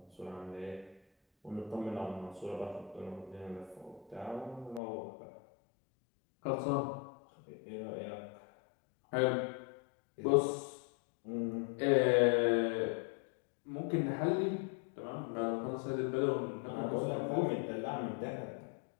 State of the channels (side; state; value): right; drops out; at 4.8 s